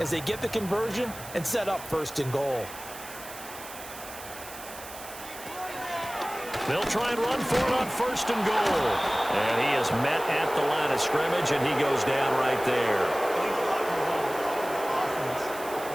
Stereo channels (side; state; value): right; noise; hiss, 14 dB below the sound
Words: as they get the conversion and set up 1st and goal. They'll try and run for it on 1st and goal. And he is met at the line of scrimmage, and he goes down right there.